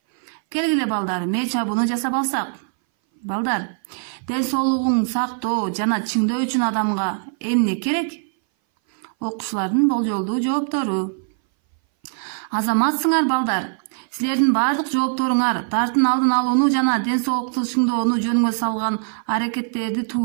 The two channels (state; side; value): silent; left; 60 dB below the other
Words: Келгиле балдар, мээ чабууну жасап алсак. Балдар, ден соолугун сактоо жана чыңдоо үчүн адамга эмне керек? Окуучулардын болжолдуу жооптору. Азаматсыңар, балдар. Силердин бардык жоопторуңар дартын алдын алууну жана ден соолукту чыңдоону жөнүнгө салган аракеттерди